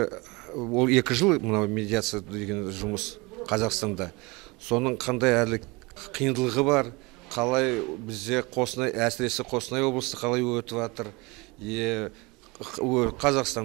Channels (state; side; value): quieter; left; 25.4 dB